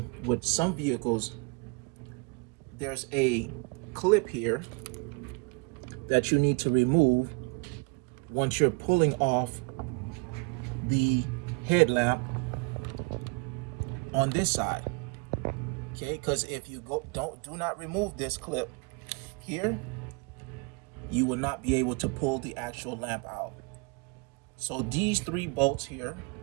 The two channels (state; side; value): quieter; left; 30.5 dB